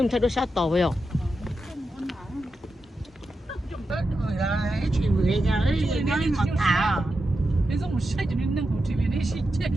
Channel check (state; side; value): normal; both; correlation 0.89